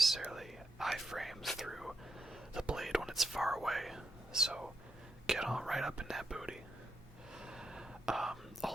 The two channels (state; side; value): normal; both; correlation 0.83